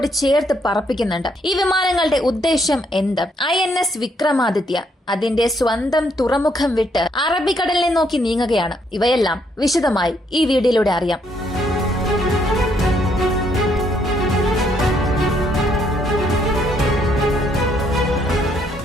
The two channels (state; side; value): normal; both; correlation 0.71